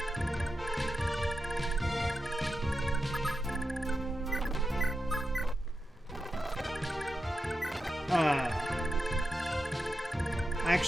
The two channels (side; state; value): both; normal; correlation 0.89